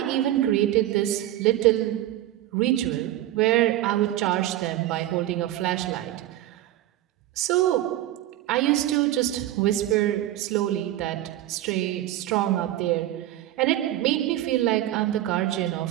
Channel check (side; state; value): left; quieter; 14.1 dB